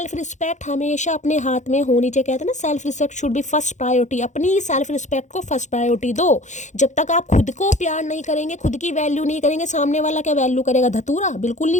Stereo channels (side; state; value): right; late; 0.35 ms